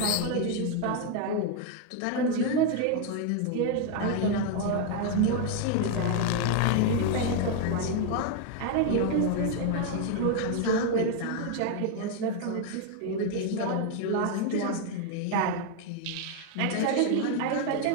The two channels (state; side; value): different; both; correlation 0.01